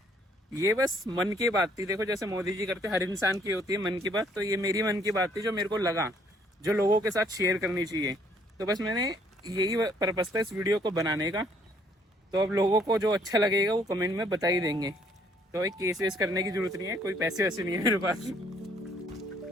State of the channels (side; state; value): both; normal; correlation 0.64